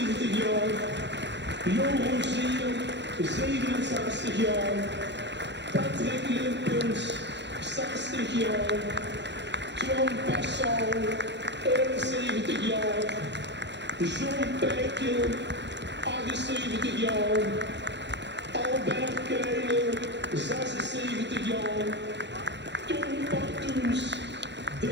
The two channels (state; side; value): late; left; 0.52 ms